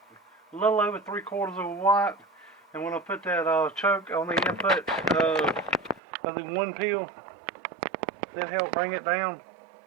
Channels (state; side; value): drops out; left; at 6.0 s